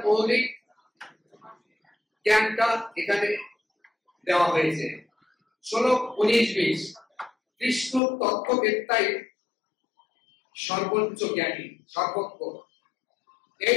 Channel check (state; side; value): drops out; right; at 8.0 s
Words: মৌলিক জ্ঞানটা এখানে দেওয়া হয়েছে। শ্লোক 19-20 কৃষ্ণ তত্ত্ববেত্তাই সর্বোচ্চ জ্ঞানী, সর্বজ্ঞ।